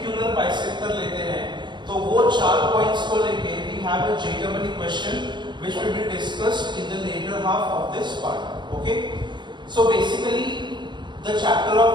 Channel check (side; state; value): left; late; 0.22 ms